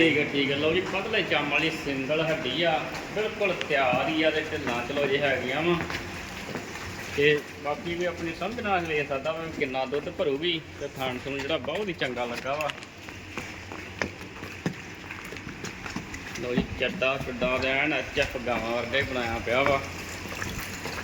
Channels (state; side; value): identical; both; correlation 1.00